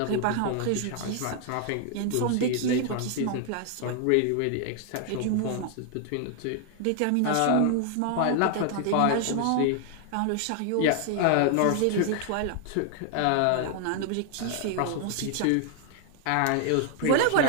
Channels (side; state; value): both; different; correlation 0.00